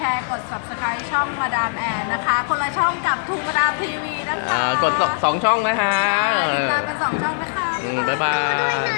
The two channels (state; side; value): silent; right; digital silence